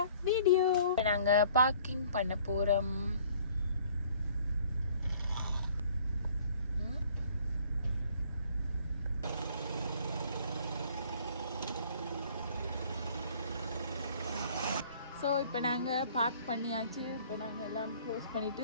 video. நாங்க பார்க்கிங் பண்ண போறோம். ஸோ இப்போ நாங்கள் பார்க் பண்ணியாச்சு. இப்போ நாங்கள் எல்லாம் க்ளோஸ்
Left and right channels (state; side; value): inverted; both; correlation -0.55